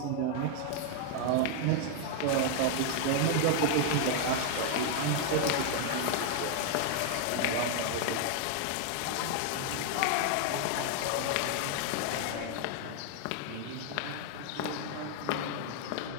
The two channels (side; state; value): both; different; correlation 0.00